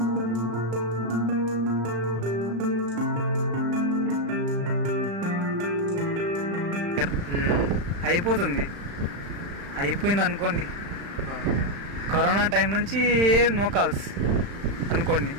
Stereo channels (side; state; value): left; late; 35 ms